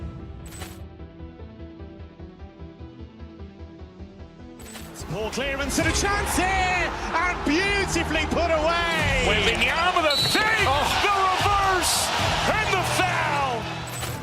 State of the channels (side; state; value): both; identical; correlation 1.00